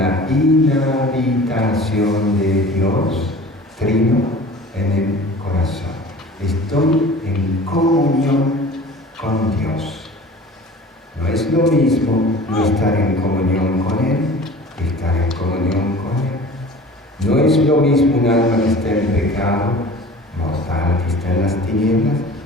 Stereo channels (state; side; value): normal; both; correlation 0.42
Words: inhabitación de Dios, trino, en el corazón. Estoy en comunión con Dios. No es lo mismo no estar en comunión con Él que estar en comunión con Él. No es lo mismo un alma que está en pecado mortal, que está en las tinieblas,